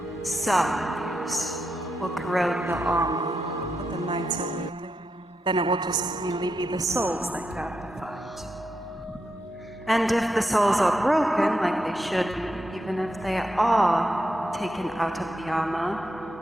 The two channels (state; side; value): normal; both; correlation 0.84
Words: some use. Will corrode the armor that the knights are wielding. Then it will just merely be the souls that go out to fight. And if the souls are broken, like they should be, even if they are taken out of the armor,